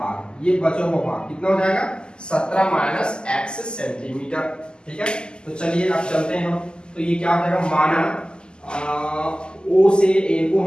ये बचा हुआ भाग कितना हो जाएगा 17 माइनस x सेंटीमीटर। ठीक है, तो चलिए अब चलते हैं हम। तो ये क्या हो जाएगा, माना ओ से ए को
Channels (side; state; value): right; late; 0.047 ms